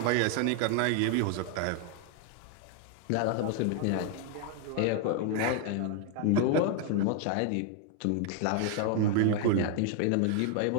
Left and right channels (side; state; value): both; different; correlation 0.00